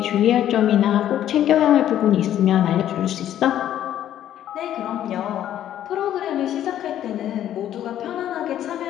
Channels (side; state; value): right; quieter; 11.4 dB